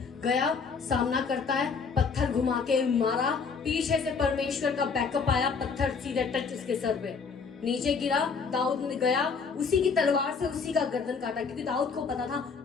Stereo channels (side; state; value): right; quieter; 5.3 dB